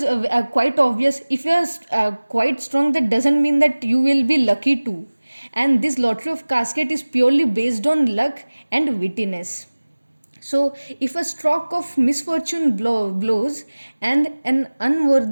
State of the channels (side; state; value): both; inverted; correlation -1.00